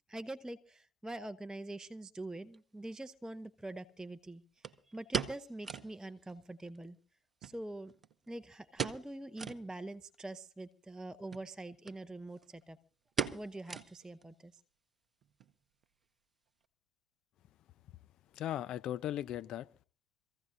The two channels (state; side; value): normal; both; correlation 0.66